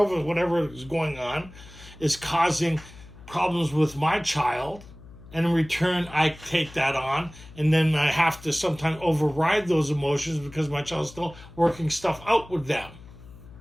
whatever is going on, is causing problems with my child. And in return, I take that on, and then I have to sometimes override those emotions because my child's still working stuff out with them.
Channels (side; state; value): left; noise; hum, 19 dB below the sound